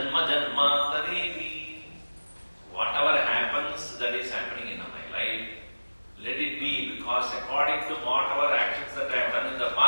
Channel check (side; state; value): both; inverted; correlation -1.00